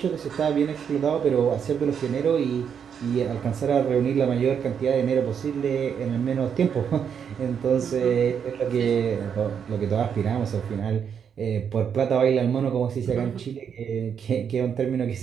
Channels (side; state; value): left; quieter; 7.5 dB